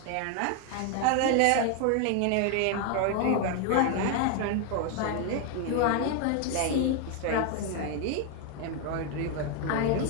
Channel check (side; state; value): both; different; correlation 0.01